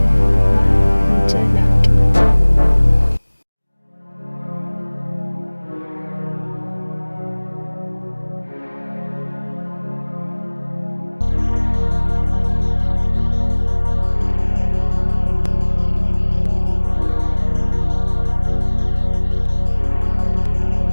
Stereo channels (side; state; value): both; inverted; correlation -1.00